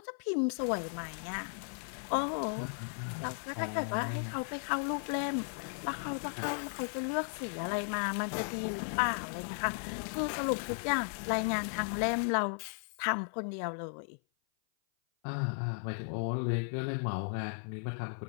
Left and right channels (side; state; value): right; silent; 54 dB below the other